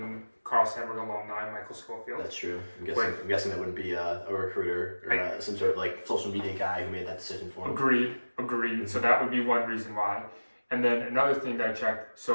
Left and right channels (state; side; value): inverted; both; correlation -1.00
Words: Carl Sandburg alumni, Michael Schofield. That's true. I'm guessing that wouldn't be a recruiter or some sort of like social media guy who made that decision for him. Agreed. Mm-hmm. So that would be one reason why. And then another thing that I checked,